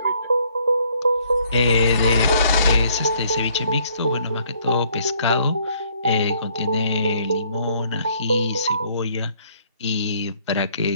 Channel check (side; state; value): both; inverted; correlation -0.65